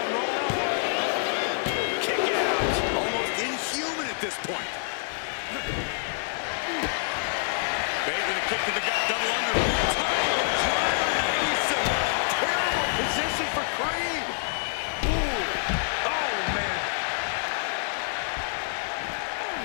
Roll up. Kick out. Almost inhuman at this point. Bate with a kick to the gut. Double under. Terrible position for Creed. Ooh. Oh, man.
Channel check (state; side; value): silent; right; digital silence